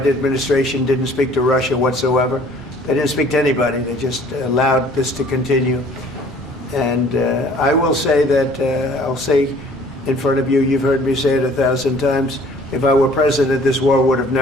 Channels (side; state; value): both; normal; correlation 0.54